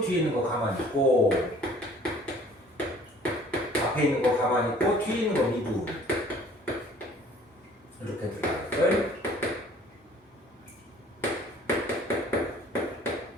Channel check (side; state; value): both; normal; correlation 0.54